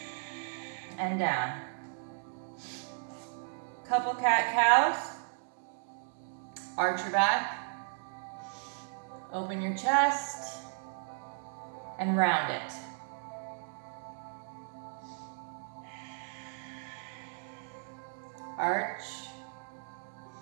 And down. Couple cat-cows. Arch your back. Open your chest. And round it. Arch.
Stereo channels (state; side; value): silent; left; 54 dB below the other